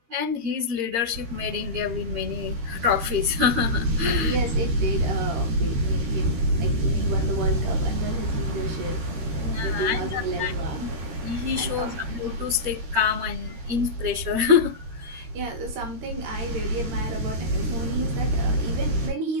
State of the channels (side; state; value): left; late; 13 ms